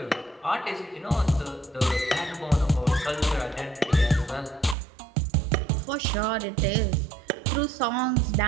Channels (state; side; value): drops out; left; at 4.8 s